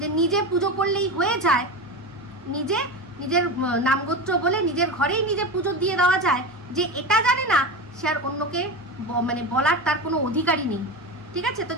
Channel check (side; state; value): both; normal; correlation 0.23